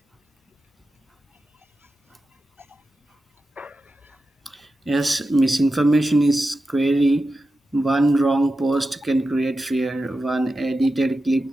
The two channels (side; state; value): both; normal; correlation 0.91